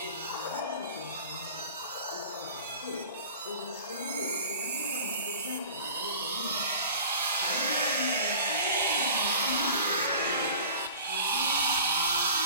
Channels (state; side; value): inverted; both; correlation -0.42